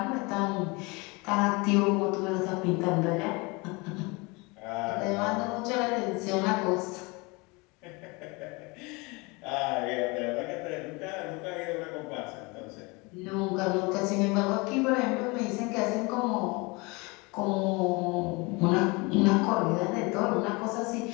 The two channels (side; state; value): right; quieter; 26.8 dB